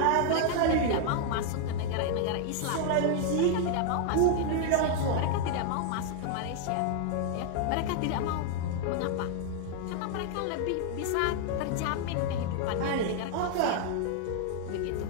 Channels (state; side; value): different; both; correlation 0.00